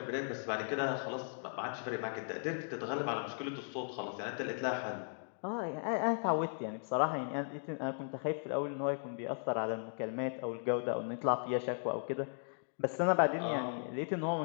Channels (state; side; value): silent; right; digital silence